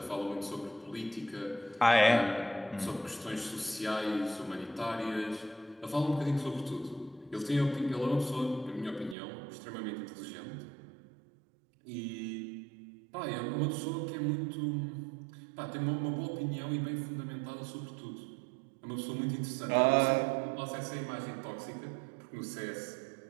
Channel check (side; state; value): left; drops out; at 9.2 s